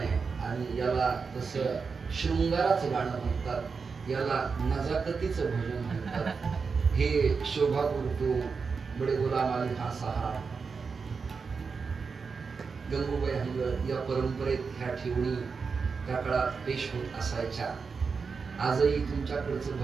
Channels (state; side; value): quieter; left; 5.2 dB